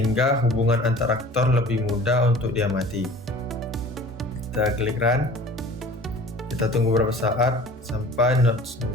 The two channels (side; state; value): both; normal; correlation 0.44